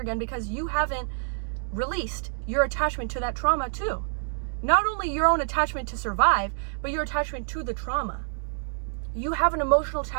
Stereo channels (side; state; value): left; silent; digital silence